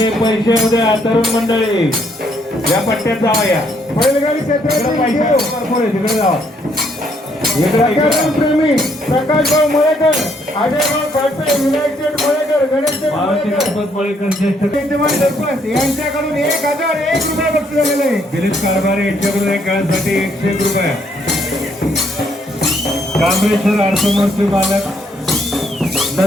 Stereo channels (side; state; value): both; normal; correlation 0.70